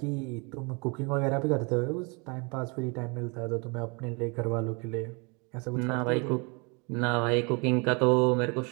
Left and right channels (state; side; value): quieter; left; 31.5 dB